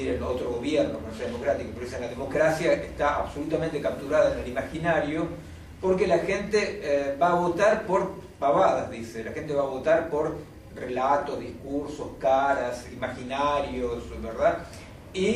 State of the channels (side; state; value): both; identical; correlation 1.00